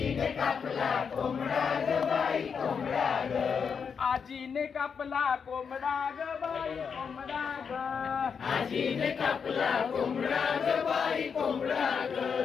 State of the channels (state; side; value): quieter; right; 6.3 dB